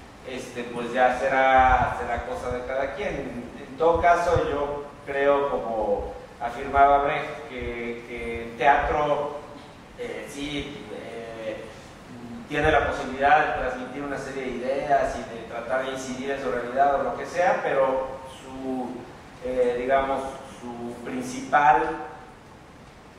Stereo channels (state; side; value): identical; both; correlation 1.00